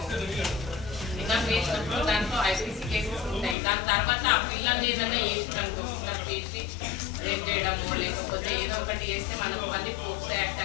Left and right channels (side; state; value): right; drops out; at 3.6 s